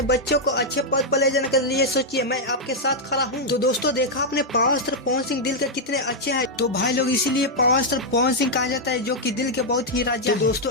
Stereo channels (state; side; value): normal; both; correlation -0.03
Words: बच्चों को अच्छे पद पर ले जाने के लिए सोचिए, मैं आपके साथ खड़ा हूँ। तो दोस्तों देखा आपने पावर स्टार पवन सिंह दिल के कितने अच्छे हैं। तो भाई लोग इसीलिए पावर स्टार पवन सिंह कहा जाता है, जो कि दिल के बहुत ही राजा है। तो दोस्तों